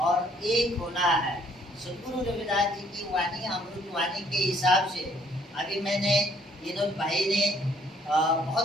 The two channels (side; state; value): both; normal; correlation 0.64